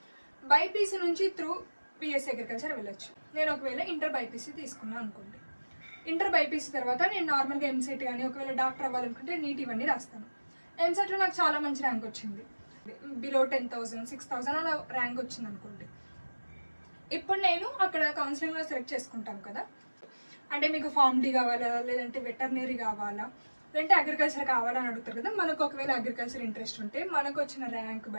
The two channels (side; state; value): both; inverted; correlation -1.00